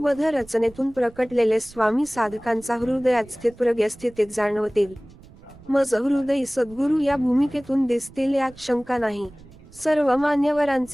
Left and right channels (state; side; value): noise; right; rumble, 22 dB below the sound